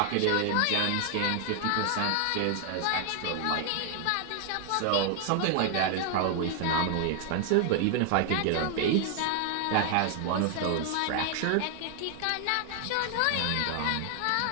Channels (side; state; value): both; different; correlation 0.00